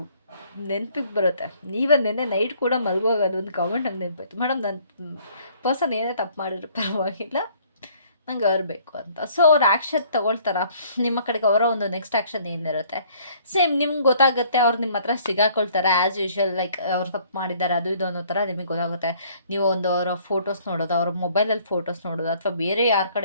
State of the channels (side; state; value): both; inverted; correlation -0.59